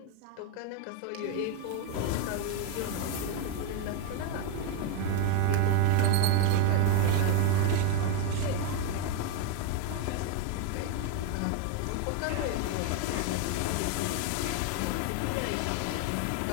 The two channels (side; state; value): both; different; correlation 0.01